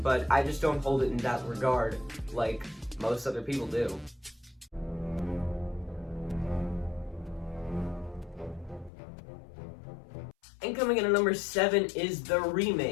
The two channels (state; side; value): drops out; right; at 8.9 s